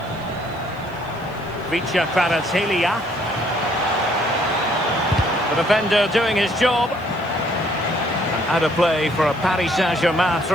Vicha Kvaratskhelia. The defender doing his job. And out of play for a Paris Saint-Germain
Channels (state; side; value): noise; left; hiss, 28 dB below the sound